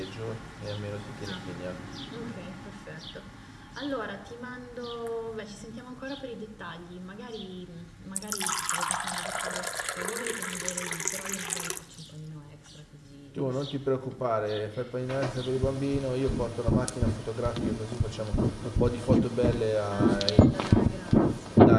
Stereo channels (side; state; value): both; identical; correlation 1.00